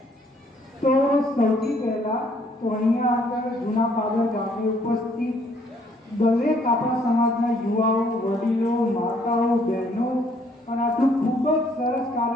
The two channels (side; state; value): both; normal; correlation 0.65